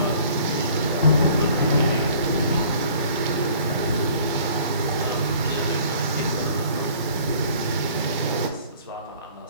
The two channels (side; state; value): both; inverted; correlation -0.53